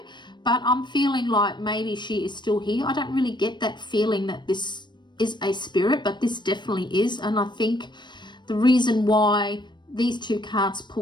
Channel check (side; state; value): right; late; 0.22 ms